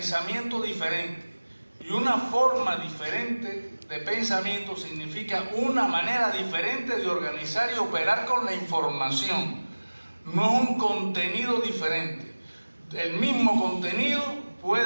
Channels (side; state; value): both; inverted; correlation -1.00